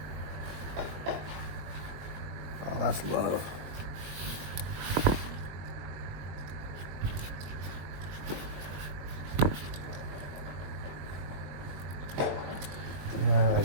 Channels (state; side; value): late; left; 21 ms